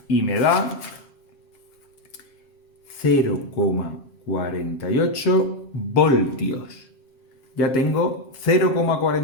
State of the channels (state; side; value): late; right; 7.5 ms